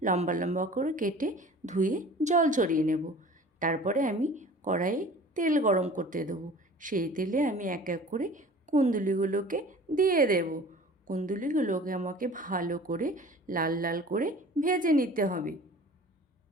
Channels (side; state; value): both; normal; correlation 0.44